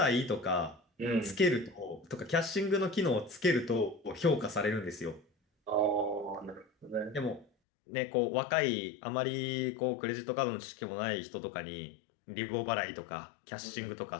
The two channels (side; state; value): right; drops out; at 7.5 s